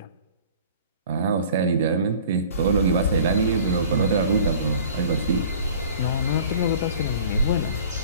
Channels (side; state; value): both; inverted; correlation -0.46